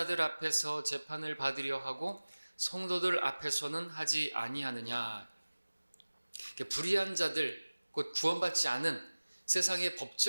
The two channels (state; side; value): inverted; both; correlation -1.00